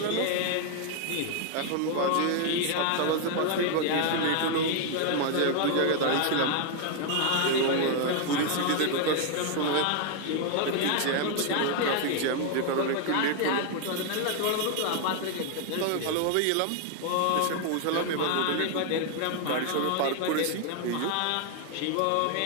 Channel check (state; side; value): different; both; correlation 0.00